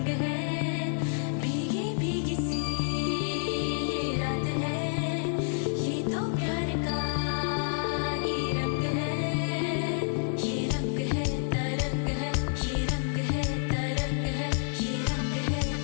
है। भीगी भीगी सी ये रात है, ये तो प्यार का ही रंग है। ये रंग है तरंग है, ये रंग है तरंग है, ये रंग है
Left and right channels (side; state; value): right; silent; digital silence